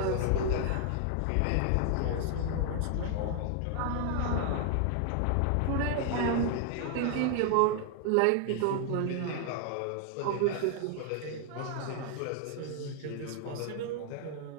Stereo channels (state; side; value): different; both; correlation 0.00